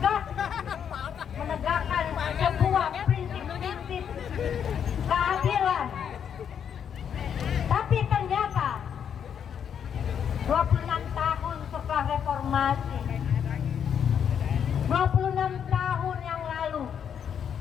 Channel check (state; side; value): quieter; right; 8.2 dB